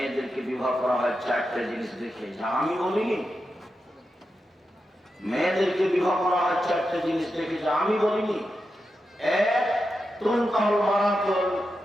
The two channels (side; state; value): both; normal; correlation 0.88